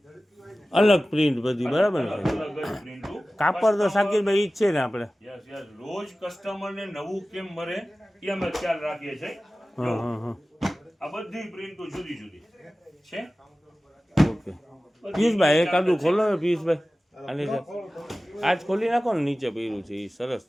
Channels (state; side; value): normal; both; correlation 0.96